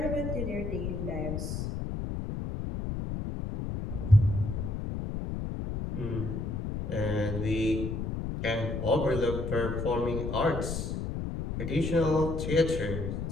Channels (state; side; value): noise; left; rumble, 3 dB below the sound